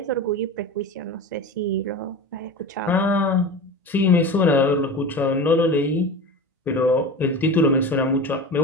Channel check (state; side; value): normal; both; correlation 0.30